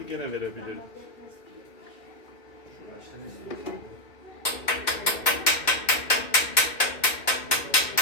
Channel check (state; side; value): late; right; 2.3 ms